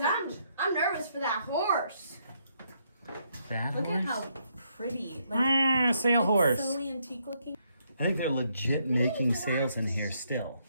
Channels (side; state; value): both; inverted; correlation -0.74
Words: I'm nervous for that horse. That Look horse? at how pretty. Like, sail horse. so antique looking. I think they're legit making sails in here still.